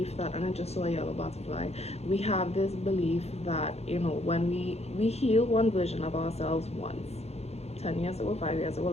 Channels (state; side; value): late; right; 0.31 ms